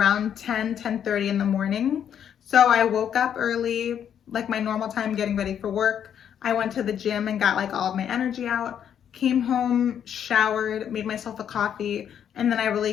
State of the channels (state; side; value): quieter; right; 9.0 dB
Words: 10:30 in the morning. So I woke up early, like my normal time, getting ready for work. I went to the gym and got like all of my energy out, came home, showered, made myself a coffee, and then I really